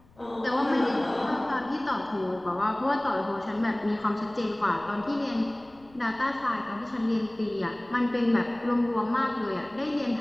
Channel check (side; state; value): left; noise; rumble, 28 dB below the sound